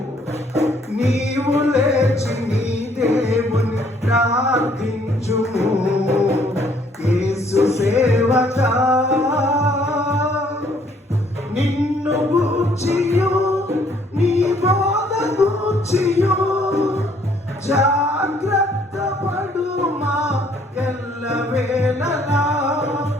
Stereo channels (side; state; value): both; normal; correlation 0.64